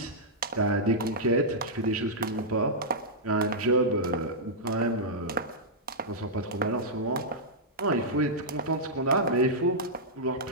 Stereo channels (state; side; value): normal; both; correlation -0.10